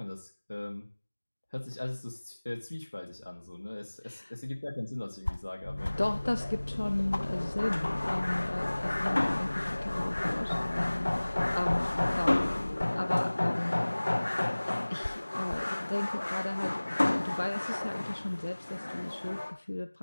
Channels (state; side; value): inverted; both; correlation -1.00